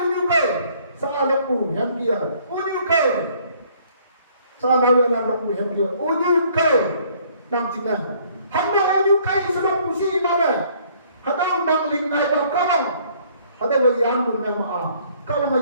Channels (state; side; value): inverted; both; correlation -0.61